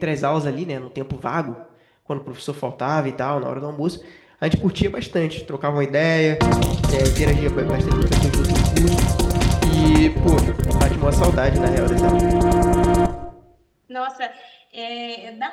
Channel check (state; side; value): identical; both; correlation 1.00